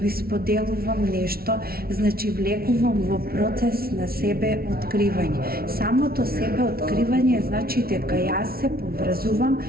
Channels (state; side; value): late; left; 0.44 ms